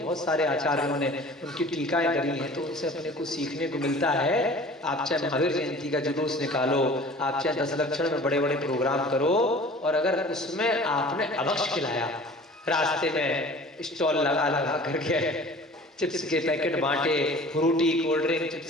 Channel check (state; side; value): normal; both; correlation 0.45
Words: सारे आचार्यों ने उनकी टीकाएं करी हैं, तो उनसे अपने को सीखने को मिलता है। आप चाहे महावीर जयंती का जुलूस निकालो, आप चाहे 10 लक्षण में बड़े बड़े प्रोग्राम करो, और अगर उसमें आपने अभक्ष्य खिलाया, रास्ते में स्टॉल लगा लगा करके चिप्स के पैकेट बांटे, फ्रूटी, कोल्ड ड्रिंक,